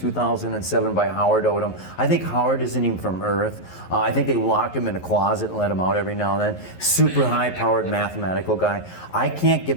by Howard Odom. I think Howard isn't even from Earth. I think they locked him in a closet and let him out every now and then. Super high-powered mathematical guy. I can't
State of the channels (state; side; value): late; right; 11 ms